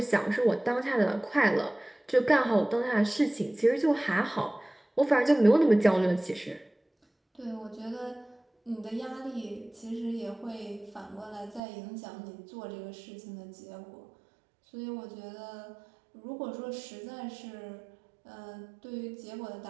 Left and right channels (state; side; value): drops out; left; at 11.6 s